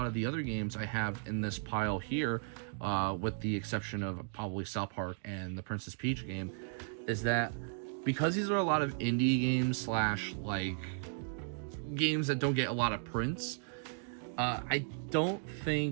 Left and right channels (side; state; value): left; silent; digital silence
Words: of the other games I have in this pile here, with the exception of probably South Park and the Princess Peach game, is that because these are a lot of indie games slash like games that don't get a lot of prints, I don't